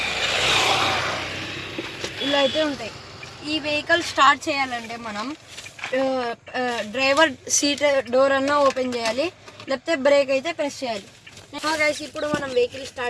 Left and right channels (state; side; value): identical; both; correlation 1.00